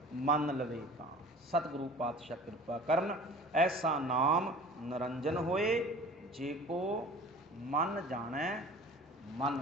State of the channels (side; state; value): both; normal; correlation 0.43